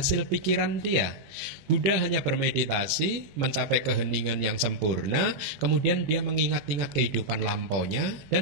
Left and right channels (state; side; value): late; left; 20 ms